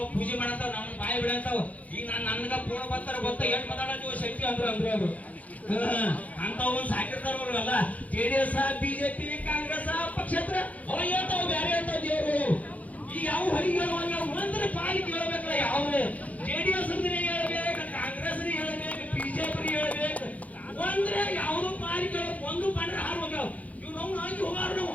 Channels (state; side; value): late; right; 0.071 ms